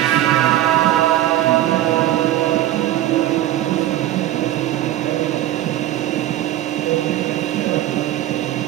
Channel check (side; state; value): left; quieter; 13.6 dB